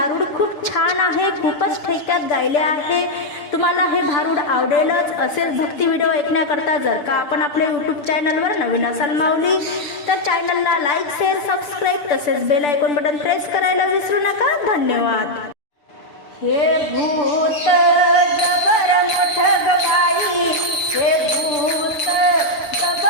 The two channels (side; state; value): right; late; 6.8 ms